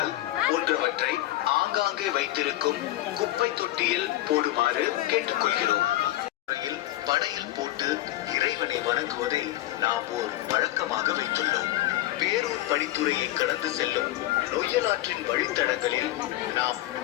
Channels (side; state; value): right; quieter; 15.6 dB